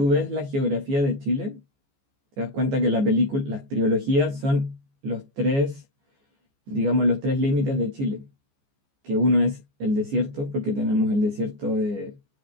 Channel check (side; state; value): left; late; 14 ms